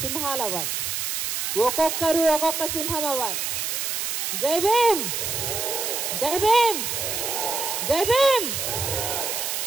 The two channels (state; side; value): noise; right; hiss, 1 dB below the sound